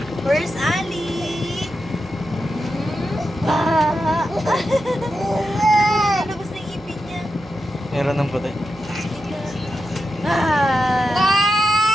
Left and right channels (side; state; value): right; noise; hum, 22 dB below the sound